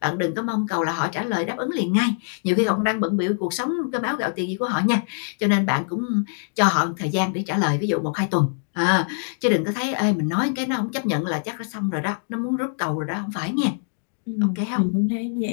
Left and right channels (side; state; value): right; silent; digital silence